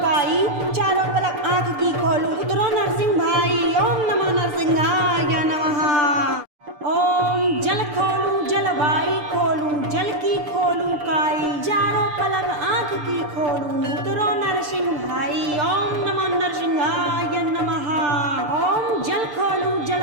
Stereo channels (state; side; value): late; left; 6.7 ms